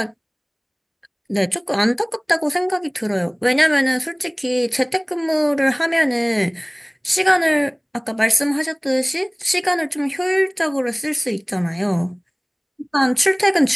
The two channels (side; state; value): both; identical; correlation 1.00